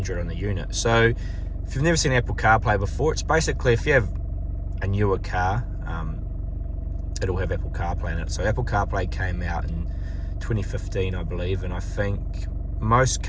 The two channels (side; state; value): both; identical; correlation 1.00